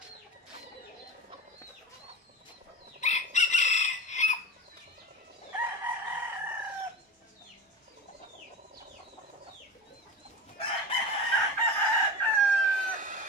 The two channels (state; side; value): normal; both; correlation 0.29